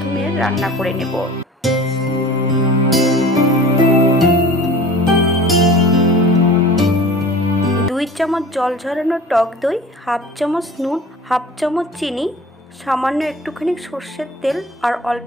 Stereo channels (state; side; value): normal; both; correlation 0.41